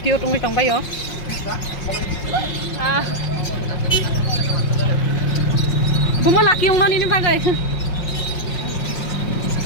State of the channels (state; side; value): late; right; 5.5 ms